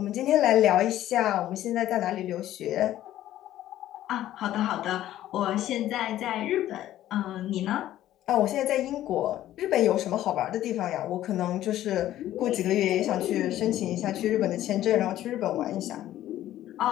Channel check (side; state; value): right; quieter; 13.3 dB